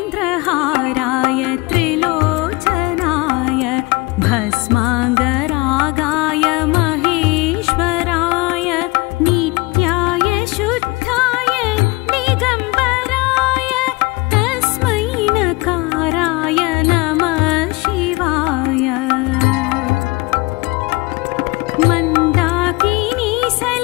नागेन्द्रहाराय त्रिलोचनाय भस्माङ्गरागाय महेश्वराय नित्याय शुद्धाय दिगम्बराय तस्मै नकाराय नमः शिवाय। मन्दाकिनी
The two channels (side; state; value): right; quieter; 23.2 dB